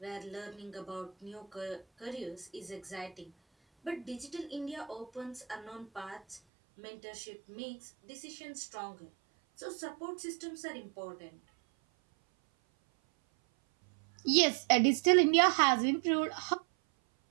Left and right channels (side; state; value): left; drops out; at 6.4 s